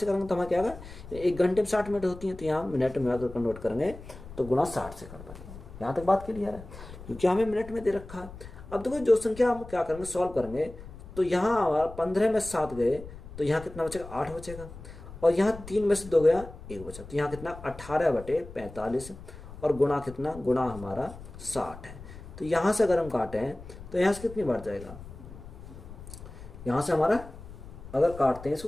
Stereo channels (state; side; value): noise; left; rumble, 15 dB below the sound